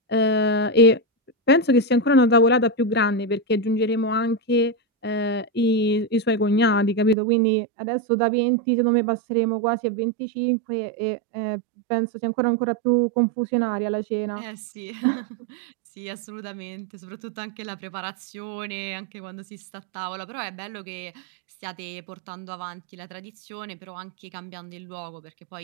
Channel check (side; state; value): left; drops out; at 7.2 s